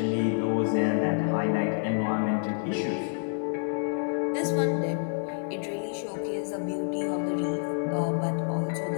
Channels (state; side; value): silent; right; digital silence